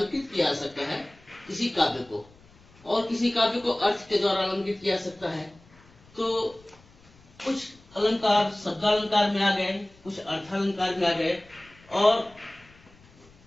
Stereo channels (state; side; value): noise; left; rumble, 27 dB below the sound